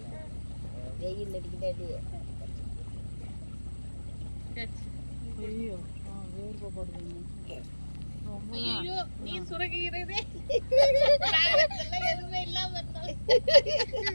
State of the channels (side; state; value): both; inverted; correlation -1.00